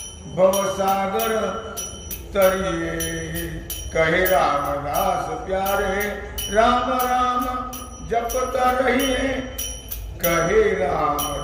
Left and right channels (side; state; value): both; identical; correlation 1.00